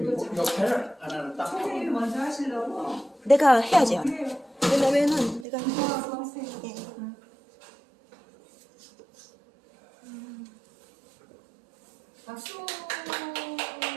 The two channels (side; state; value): left; drops out; at 5.5 s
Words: 역할을 안 하는 딱. 선생님이 먼저 하시려고? 내가 해야죠. 해요. 왜냐면은 내가 선생님. 예. 박수.